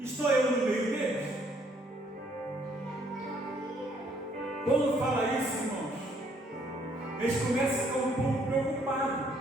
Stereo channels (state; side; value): normal; both; correlation 0.67